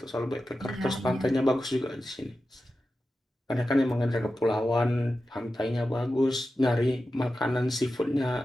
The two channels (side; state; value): both; normal; correlation 0.92